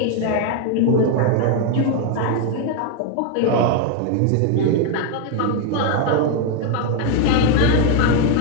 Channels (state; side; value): different; both; correlation 0.01